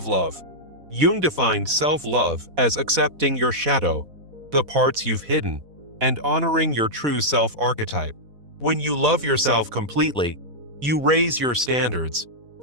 love. Jung defined self-love as accepting your shadow, the parts you've hidden, and honoring your true self-archetype. When you love yourself completely, you raise your standards,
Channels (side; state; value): left; late; 4.1 ms